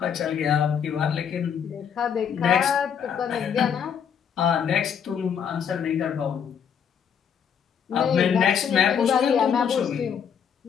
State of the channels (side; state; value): right; quieter; 7.7 dB